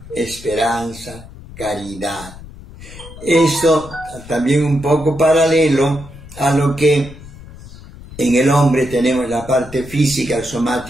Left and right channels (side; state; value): left; noise; rumble, 17 dB below the sound